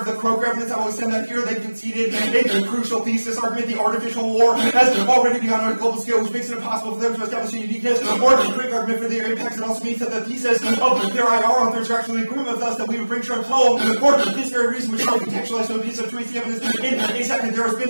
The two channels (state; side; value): inverted; both; correlation -1.00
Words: The Crow evidence, I will extend that here. They conceded a crucial thesis argument. The artificial war has already begun on a global scale, which makes it impossible for them to establish a uniqueness or a quick argument for their impacts. It also means that the thesis of their IR authors are actually agreeing with us that we would bring Trump home for this very reason, which is contextualized so a piece of truth evidence. In a second, there has